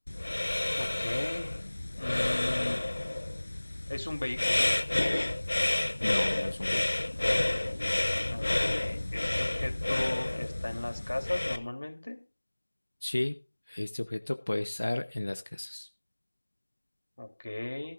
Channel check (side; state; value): both; inverted; correlation -1.00